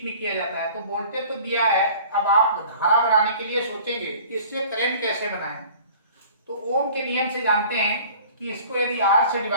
में किया जाता है। तो वोल्टेज तो दिया है, अब आप धारा बनाने के लिए सोचेंगे इससे करंट कैसे बनाएं। तो ओम के नियम से जानते हैं कि इसको यदि R से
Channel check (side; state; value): both; inverted; correlation -0.46